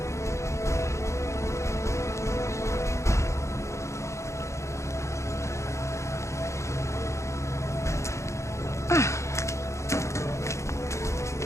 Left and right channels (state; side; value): late; right; 0.14 ms